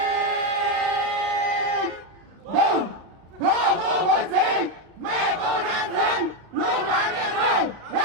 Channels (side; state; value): left; late; 36 ms